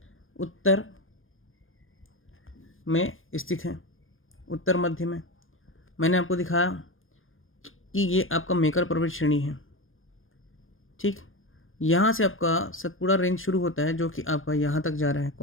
उत्तर में स्थित है, उत्तर मध्य में। मैंने आपको दिखाया कि ये आपका मेकर पर्वत श्रेणी है, ठीक। यहाँ से आपका सतपुड़ा रेंज शुरू होता है, जो कि आपका यहाँ तक जा रहा है।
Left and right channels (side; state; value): right; late; 0.59 ms